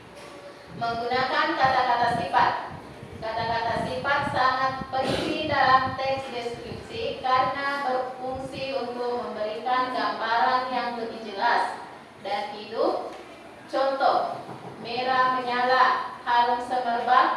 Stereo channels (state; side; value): identical; both; correlation 1.00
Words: Menggunakan kata-kata sifat. Kata-kata sifat sangat penting dalam teks deskripsi karena berfungsi untuk memberikan gambaran yang lebih jelas dan hidup. Contoh, merah menyala, harum